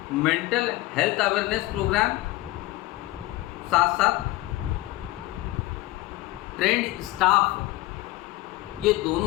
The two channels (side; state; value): right; quieter; 18.4 dB